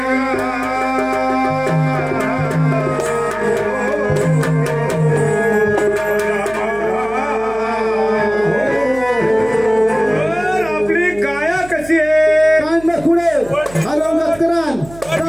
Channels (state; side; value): noise; right; hum, 19 dB below the sound